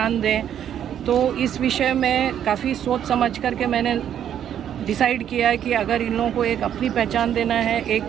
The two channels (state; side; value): quieter; left; 9.8 dB